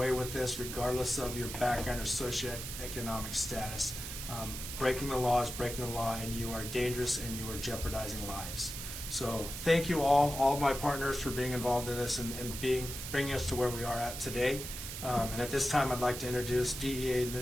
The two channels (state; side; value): noise; right; hiss, 7 dB below the sound